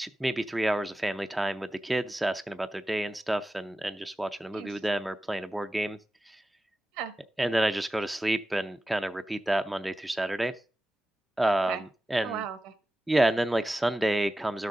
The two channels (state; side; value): normal; both; correlation 0.94